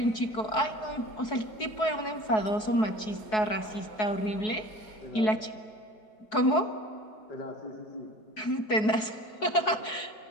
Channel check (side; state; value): right; late; 4.7 ms